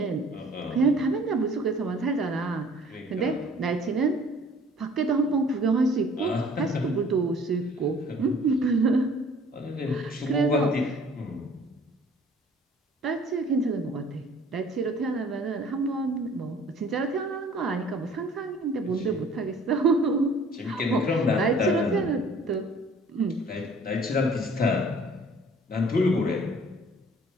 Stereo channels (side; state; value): both; normal; correlation 0.52